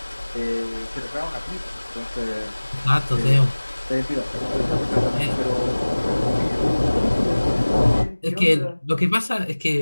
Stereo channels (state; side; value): inverted; both; correlation -1.00